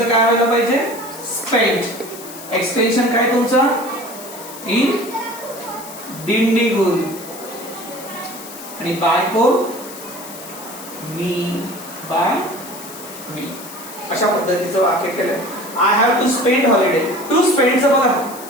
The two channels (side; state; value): left; noise; hiss, 14 dB below the sound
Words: काय व्हायला पाहिजे? स्पेंड. एक्सटेन्शन काय तुमचं? इन डिंडिगुल. आणि बाय कोण? मी, बाय मी. अशा पद्धतीचं वाक्य केलंय. I have to spend holiday. To स्पेंडचं बघा,